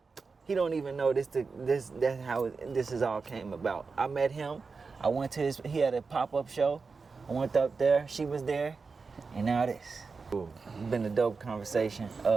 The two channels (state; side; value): quieter; left; 4.6 dB